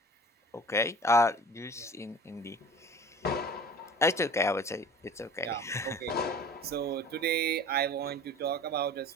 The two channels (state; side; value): normal; both; correlation 0.42